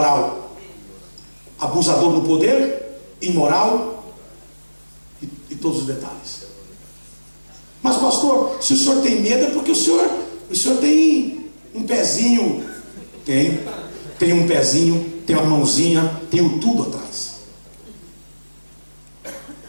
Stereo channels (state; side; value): inverted; both; correlation -1.00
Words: Abusador do poder, imoral e todos os detalhes. Mas pastor, se o senhor tem medo é porque o senhor tem um pezinho. Tem um pezinho, tem uma mãozinha, tenho tudo atrás.